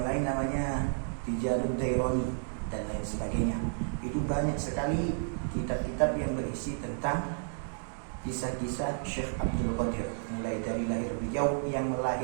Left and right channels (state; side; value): silent; left; digital silence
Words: lain namanya Tijarud Daironi dan lain sebagainya. Itu banyak sekali kitab-kitab yang berisi tentang kisah-kisah Syekh Abdul Qadir, mulai dari lahir beliau yang